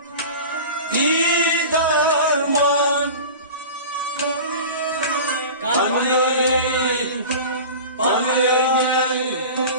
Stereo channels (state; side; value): inverted; both; correlation -0.34